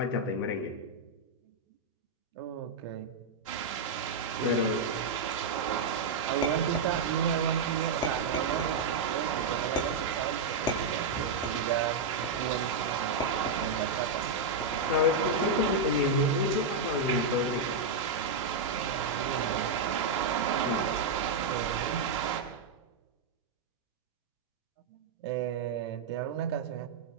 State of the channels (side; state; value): left; quieter; 3.7 dB